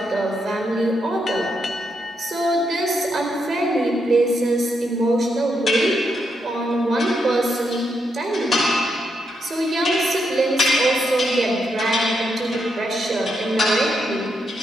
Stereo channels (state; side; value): normal; both; correlation 0.81